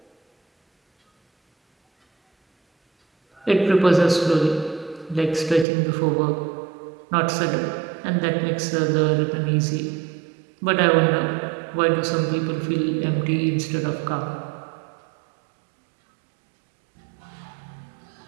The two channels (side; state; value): left; drops out; at 5.7 s